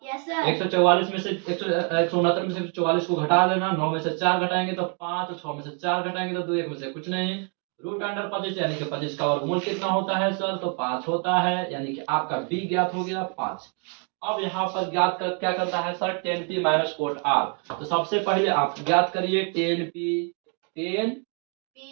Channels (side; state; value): left; quieter; 38.7 dB